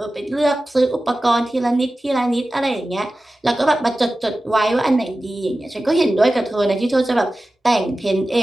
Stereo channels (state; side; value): normal; both; correlation 0.95